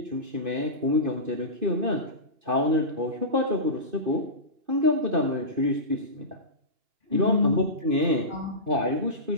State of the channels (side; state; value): left; late; 2.5 ms